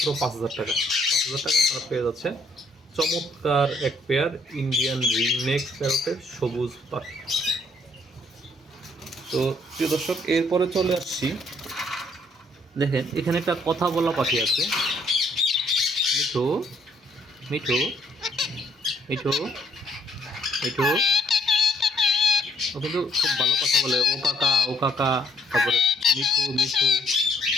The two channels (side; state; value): both; normal; correlation 0.67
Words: 5,000 টাকা। 5,000 টাকা আপনারা পেয়ে যাচ্ছে চমৎকার এক পেয়ার ইন্ডিয়ান রিংনেক প্যারটের সবুজ পাখি। তো প্রিয় দর্শক, এরপরে চলে আসছি, দেখেন এখানে একটা কথা বলা পাখি আছে, মিঠু মিঠু মিঠু মিঠু। ও কিন্তু খুব ভালো কথা বলে, ও কাকা ও কাকা, তারপরে মিঠু মিঠু